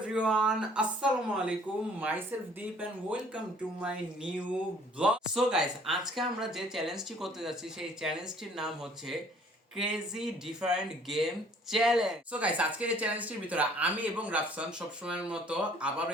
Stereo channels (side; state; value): both; normal; correlation 0.57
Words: everyone, Assalamu alaikum, myself Deep and welcome to my new vlog. So guys, আজকে আমরা যে চ্যালেঞ্জটি করতে যাচ্ছি সেই চ্যালেঞ্জটির নাম হচ্ছে crazy different game challenge. So guys, আজকের এই চ্যালেঞ্জটির ভিতরে আমি এবং রাফসান সবসময়ের মতো আবারও